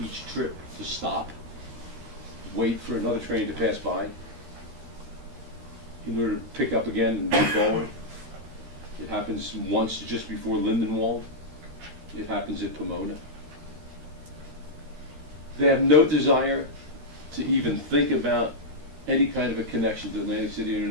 trip to stop, wait for another train to pass by in order to pick up again and move forward. It happens once just before Lindenwold. It happens at Pomona. They have no desire to even think about any kind of a connection to Atlantic City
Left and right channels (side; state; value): left; late; 13 ms